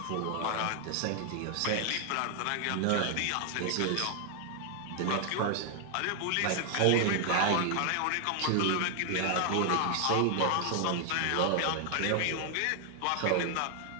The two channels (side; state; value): both; different; correlation 0.00